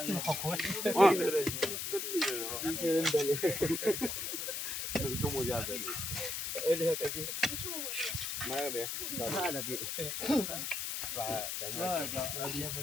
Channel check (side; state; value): left; noise; hiss, 3 dB below the sound